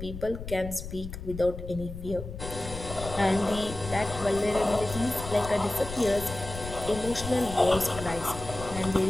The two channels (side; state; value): left; noise; rumble, 10 dB below the sound